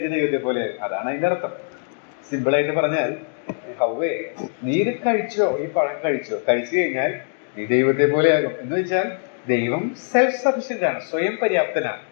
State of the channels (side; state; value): right; silent; digital silence